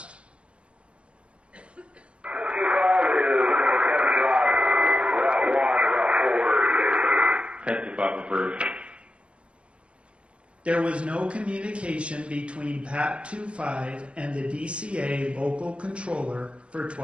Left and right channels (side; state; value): left; late; 0.060 ms